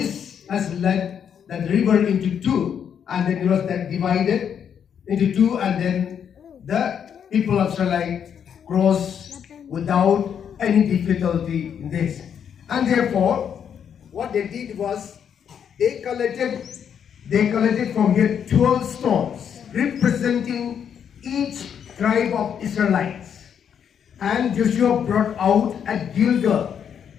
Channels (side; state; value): right; quieter; 8.1 dB